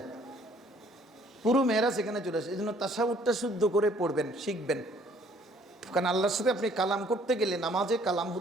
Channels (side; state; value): both; normal; correlation 0.60